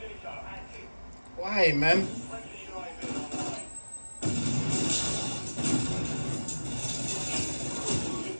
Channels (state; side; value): inverted; both; correlation -1.00